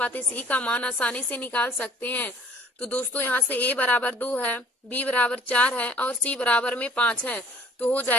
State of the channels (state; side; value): normal; both; correlation 0.54